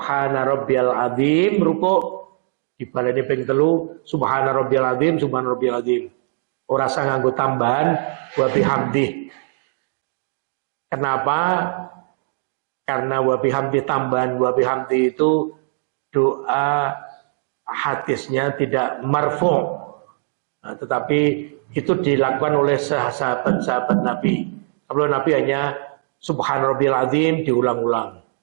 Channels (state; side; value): silent; left; digital silence